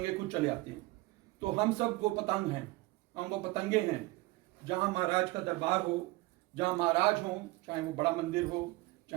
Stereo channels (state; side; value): quieter; left; 21.1 dB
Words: खुद चले आते हैं। तो हम सब वो पतंग हैं, हम वो पतंगे हैं। जहाँ महाराज का दरबार हो, जहाँ महाराज हो, चाहे वो बड़ा मंदिर हो,